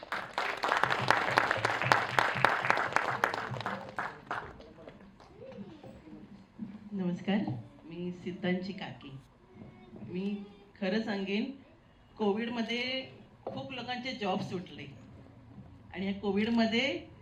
नमस्कार, मी सिद्धांची काकी. मी खरं सांगेन, कोविडमध्ये खूप लोकांचे जॉब सुटले आणि या कोविडमध्ये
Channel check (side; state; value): both; identical; correlation 1.00